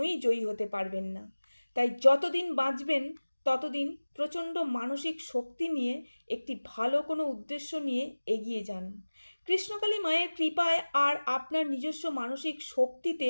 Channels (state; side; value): inverted; both; correlation -1.00